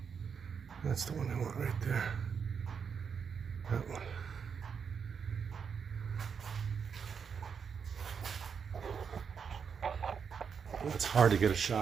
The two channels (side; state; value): left; quieter; 6.5 dB